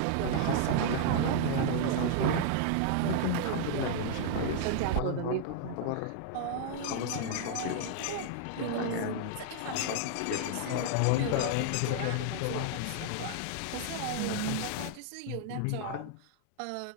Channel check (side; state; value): both; different; correlation -0.01